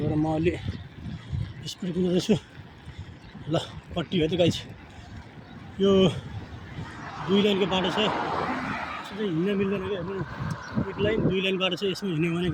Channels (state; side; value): identical; both; correlation 1.00